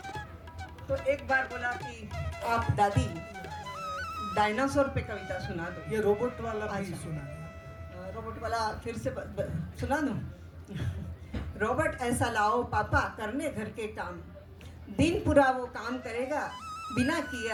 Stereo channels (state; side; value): identical; both; correlation 1.00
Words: तो एक बार बोला कि आप दादी डायनासोर पे कविता सुना दो। ये रोबोट वाला भी अच्छा। सुना दिया। रोबोट वाला फिर से सुना दूं? रोबोट ऐसा लाओ पापा करने घर के काम, दिन पूरा वो काम करेगा बिना किए